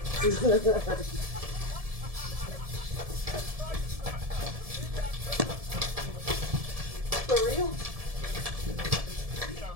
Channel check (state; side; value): late; left; 1.7 ms